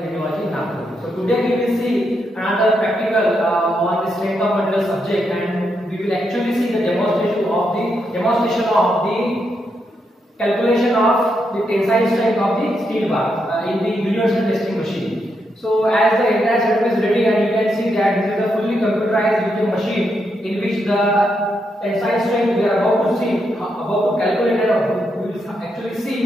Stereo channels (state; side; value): normal; both; correlation 0.81